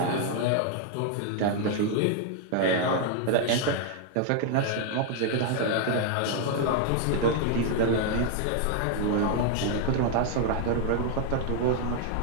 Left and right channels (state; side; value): different; both; correlation 0.00